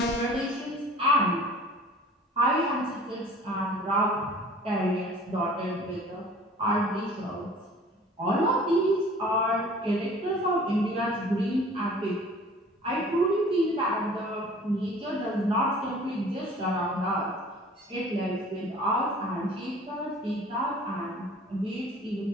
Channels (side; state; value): both; normal; correlation 0.48